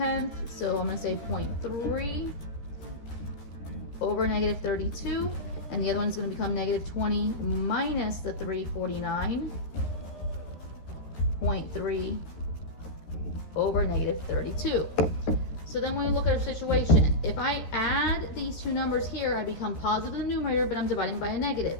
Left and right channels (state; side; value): late; right; 13 ms